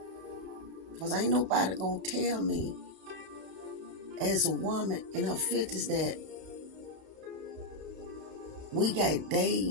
Because ain't nobody gonna tell me as a woman in her 50s that we got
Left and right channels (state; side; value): late; left; 32 ms